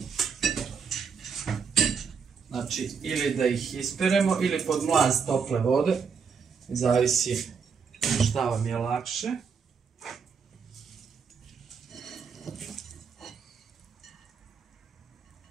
Znači, ili da ih isperemo ili pod mlaz tople vode. Zavisi šta vam je lakše.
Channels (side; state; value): left; quieter; 6.0 dB